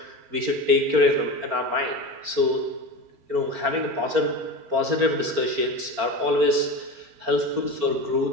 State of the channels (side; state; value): left; late; 4.4 ms